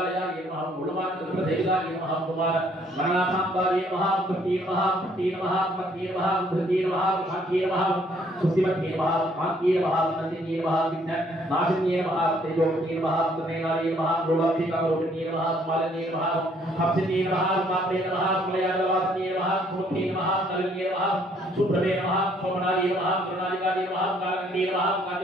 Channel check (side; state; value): both; normal; correlation 0.64